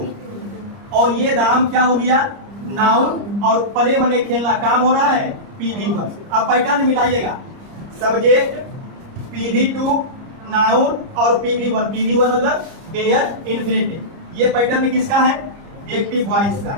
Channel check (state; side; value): late; left; 30 ms